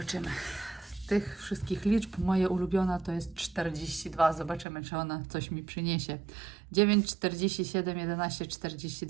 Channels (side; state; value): left; drops out; at 4.7 s